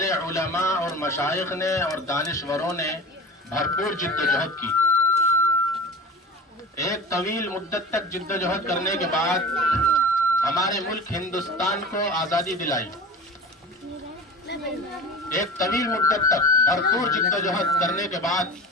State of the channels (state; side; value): normal; both; correlation 0.35